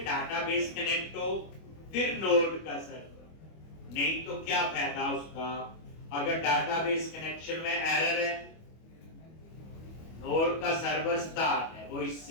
डाटाबेस कनेक्ट हो फिर नोड का सर्वर नहीं तो क्या फायदा उसका अगर डाटाबेस कनेक्शन में एरर है नोड का सर्वर स्टार्ट है वो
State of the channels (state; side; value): late; right; 25 ms